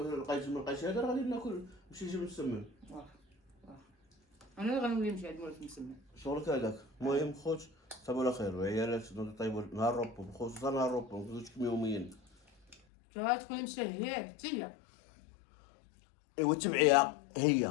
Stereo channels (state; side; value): drops out; right; at 12.8 s